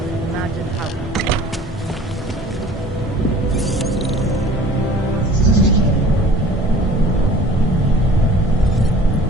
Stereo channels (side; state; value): both; normal; correlation 0.48